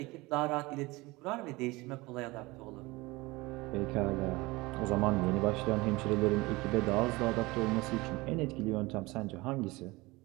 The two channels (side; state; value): left; quieter; 22.1 dB